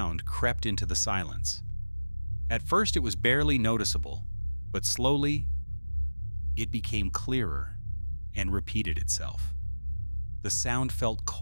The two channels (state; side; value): inverted; both; correlation -1.00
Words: crept into the silence. At first, it was barely noticeable, but slowly, it became clearer and repeated itself. The sound felt